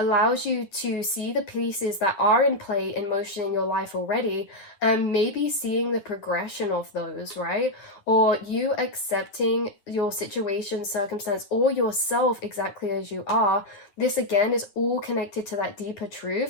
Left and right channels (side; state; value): right; late; 9.7 ms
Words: you to see the pieces that are in play, in motion in your life already, and maybe seeing the progression of those, right? Or you accepting your situation, circumstance, or yourself exactly as you are. This again is all connected to that deeper